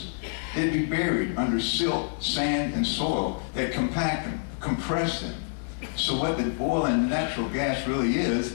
they'd be buried under silt, sand, and soil that compact them, compress them. So what the oil and natural gas really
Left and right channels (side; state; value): right; silent; 60 dB below the other